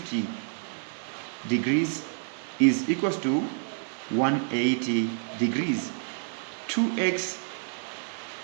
degrees is equals to 180 degrees. 2x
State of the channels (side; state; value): left; silent; 59 dB below the other